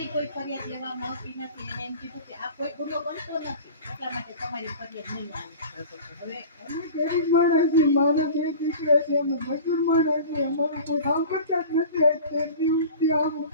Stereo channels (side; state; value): both; inverted; correlation -0.39